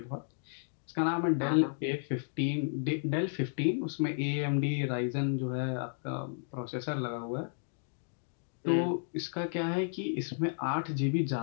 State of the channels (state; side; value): silent; right; digital silence